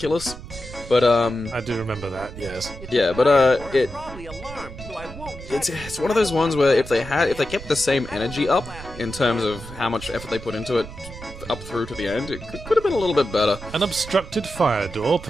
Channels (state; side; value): noise; right; rumble, 13 dB below the sound